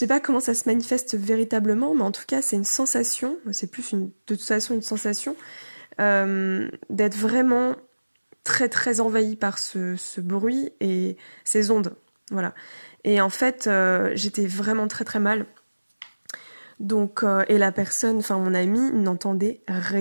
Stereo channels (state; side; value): inverted; both; correlation -1.00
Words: pas comment ça se manifeste véritablement, mais en tout cas, c'est une sensation, c'est plus de toute façon une sensation, d'être vraiment très très envahie par ce bruit et ces ondes. Voilà. Et en fait, j'étais vraiment très très mal. Donc, et la personne, enfin mon ami, n'entendait